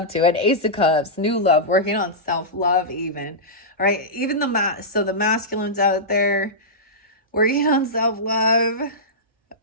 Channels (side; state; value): both; normal; correlation -0.14